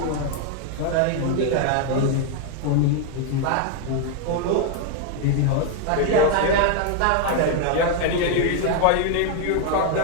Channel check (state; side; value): different; both; correlation 0.00